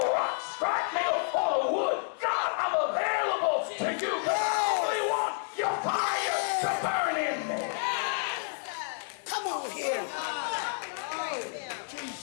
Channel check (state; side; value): silent; right; 58 dB below the other